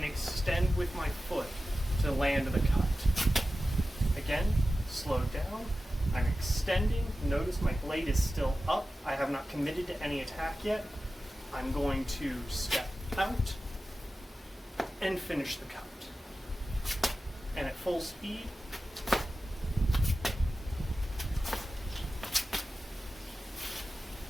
extend with my foot to land the cut. Again, slow down. I'm extending. Notice my blade is still up. I have not committed to any attack yet. I'm going to step out and finish the cut. And at full speed,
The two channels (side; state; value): both; normal; correlation 0.94